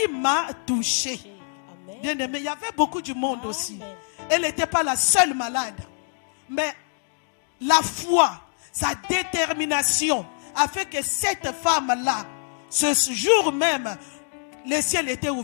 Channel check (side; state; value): right; silent; 62 dB below the other